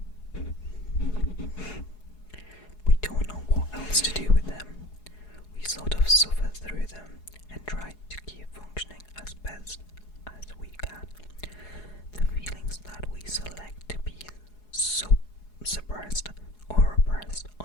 We don't know what else to do with them. We sort of suffer through them and try to keep functioning as best as we can. The feelings that we select to be suppressed or repressed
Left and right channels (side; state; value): right; late; 4.8 ms